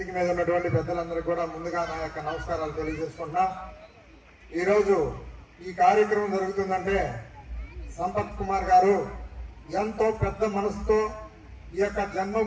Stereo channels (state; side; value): identical; both; correlation 1.00